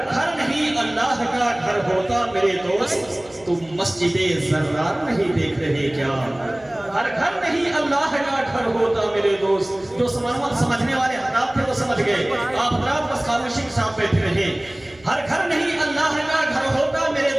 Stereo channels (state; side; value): noise; right; hum, 27 dB below the sound